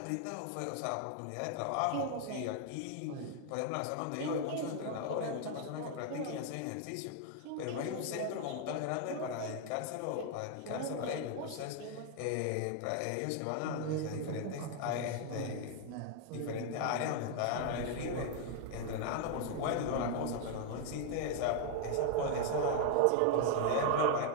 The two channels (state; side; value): different; both; correlation 0.00